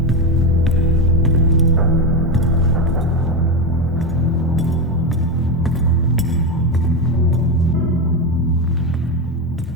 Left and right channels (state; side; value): normal; both; correlation 0.13